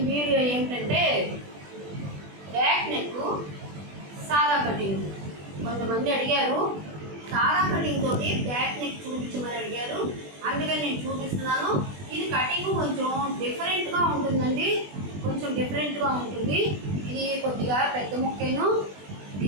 వీడియో ఏంటంటే బ్యాక్ నెక్ సాదా కటింగ్. కొంతమంది అడిగారు సాదా కటింగ్ తోటి బ్యాక్ నెక్ చూపించమని అడిగారు, అందుకని నేను చూపిస్తున్నాను. ఇది కటింగ్ కొంచెం డిఫరెంట్గా ఉంటుందండి, కొంచెం డిఫరెంట్గా ఉంటుంది. ఇది కొద్దిగా పెద్ద ముక్కేను,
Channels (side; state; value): left; late; 20 ms